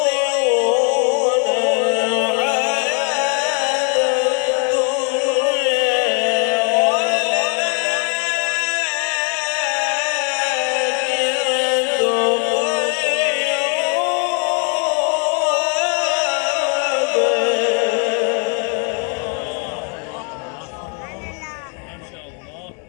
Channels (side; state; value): right; quieter; 39.3 dB